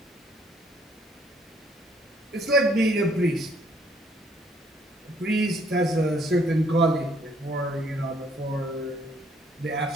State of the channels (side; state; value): both; normal; correlation 0.65